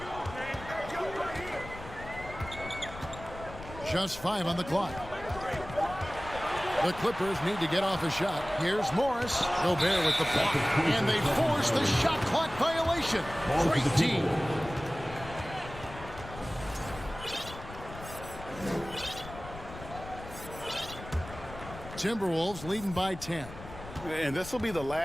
Just 5 on the clock. The Clippers need to get off a shot. Here's Morris. Gobert with the block. And they force the shot clock violation. Great team. Timberwolves leading by 10. And this will be the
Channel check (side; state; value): left; noise; rumble, 14 dB below the sound